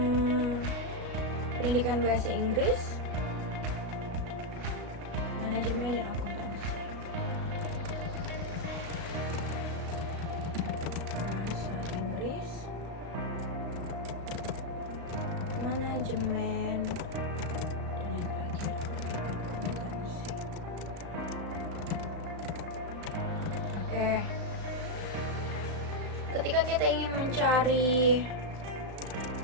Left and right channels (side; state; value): left; late; 35 ms